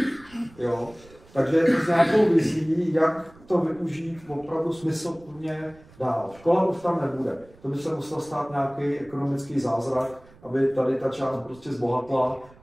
Jo? Takže s nějakou vizí, jak to využít opravdu smysluplně dál. Škola už tam nebude. To by se musel stát nějaký ekonomický zázrak, aby tady ta část prostě zbohatla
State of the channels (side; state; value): right; noise; rumble, 25 dB below the sound